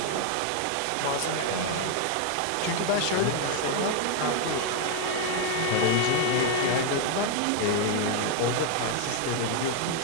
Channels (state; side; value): different; both; correlation 0.00